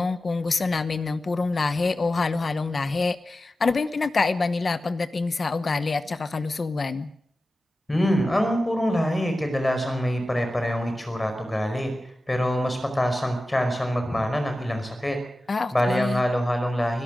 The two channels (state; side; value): normal; both; correlation 0.94